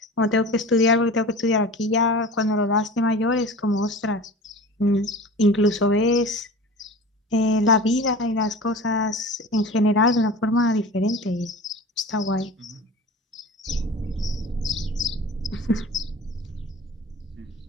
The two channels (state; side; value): normal; both; correlation 0.37